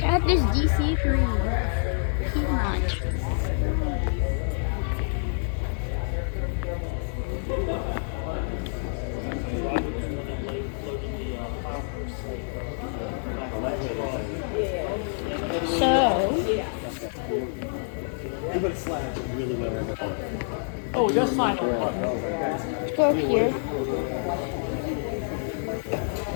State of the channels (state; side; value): silent; right; digital silence